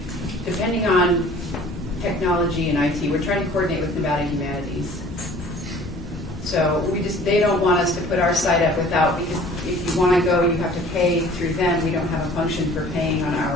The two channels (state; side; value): normal; both; correlation 0.49